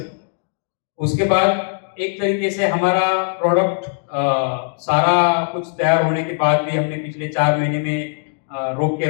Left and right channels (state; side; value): silent; right; digital silence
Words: उसके बाद एक तरीके से हमारा प्रोडक्ट सारा कुछ तैयार होने के बाद भी हमने पिछले 4 महीने में रोक के